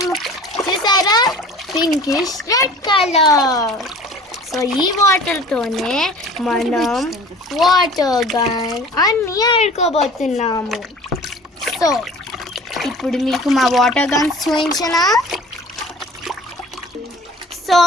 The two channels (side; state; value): both; normal; correlation 0.44